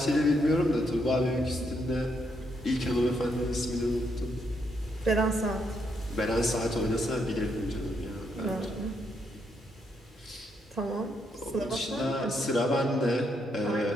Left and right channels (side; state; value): both; normal; correlation 0.77